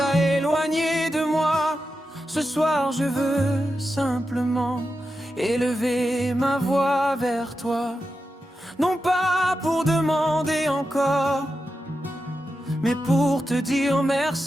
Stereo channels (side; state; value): both; normal; correlation 0.89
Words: éloigné de moi. Ce soir je veux simplement élever ma voix vers toi. Non pas pour demander encore, mais pour te dire